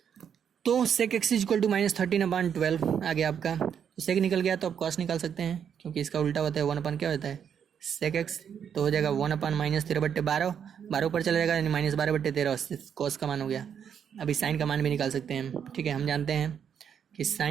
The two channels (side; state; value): left; quieter; 8.0 dB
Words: तो sec x is equal to -13/12 आ गया आपका, तो sec निकल गया, तो आप cos निकाल सकते हैं, क्योंकि इसका उल्टा होता है 1/, क्या होता है sec x, तो हो जाएगा 1/, -13/12, 12 ऊपर चला जाएगा, यानी -12/13, cos का मान हो गया। अभी साइन का मान भी निकाल सकते हैं, ठीक है। हम जानते हैं कि